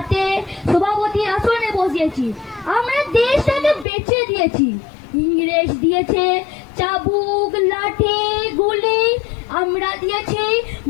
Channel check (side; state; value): right; drops out; at 3.9 s